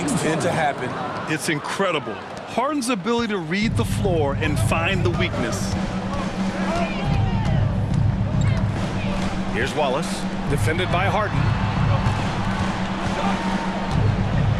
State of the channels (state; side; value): identical; both; correlation 1.00